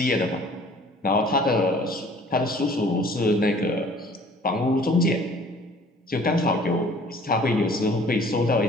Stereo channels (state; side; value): normal; both; correlation 0.52